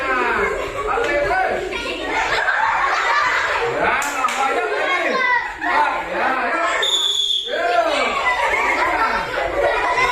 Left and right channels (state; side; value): identical; both; correlation 1.00